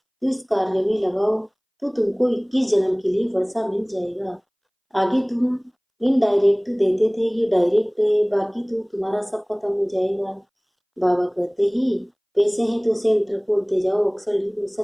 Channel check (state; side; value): identical; both; correlation 1.00